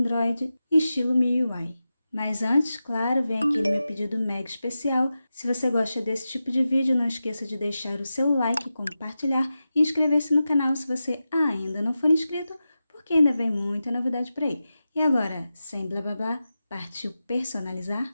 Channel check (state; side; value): inverted; both; correlation -0.92